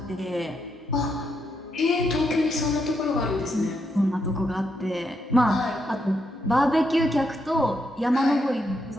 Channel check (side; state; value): both; normal; correlation 0.79